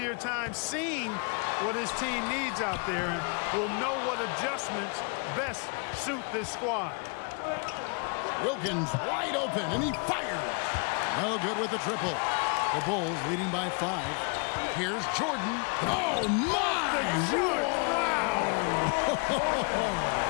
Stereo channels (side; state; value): right; quieter; 36.5 dB